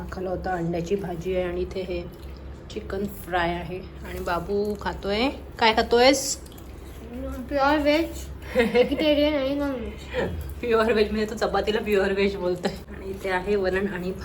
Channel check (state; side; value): identical; both; correlation 1.00